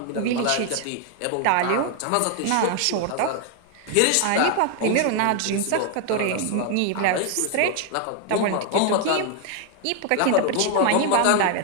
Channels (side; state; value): both; different; correlation 0.00